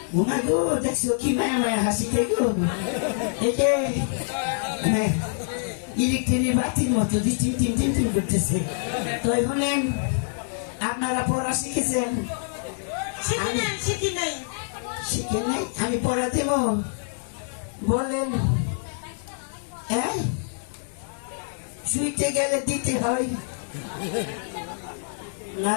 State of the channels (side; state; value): right; silent; digital silence